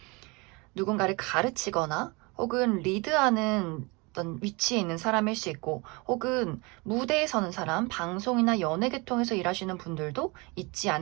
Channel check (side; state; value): left; quieter; 27.3 dB